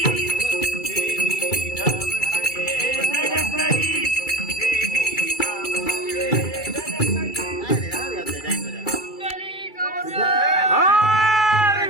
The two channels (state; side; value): late; right; 2.3 ms